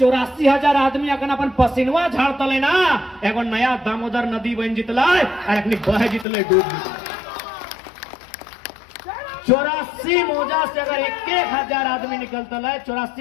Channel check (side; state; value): right; drops out; at 6.2 s